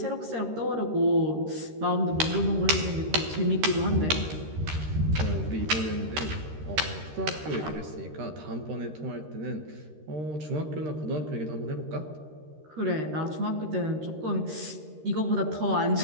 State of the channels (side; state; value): left; late; 13 ms